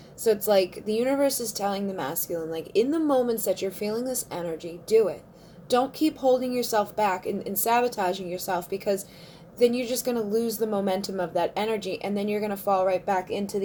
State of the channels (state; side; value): identical; both; correlation 1.00